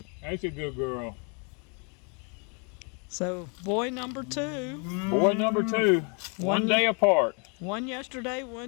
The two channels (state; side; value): quieter; right; 36.2 dB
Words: That's a good girl. So, boy number 2. Boy number 2. One day apart. One yesterday,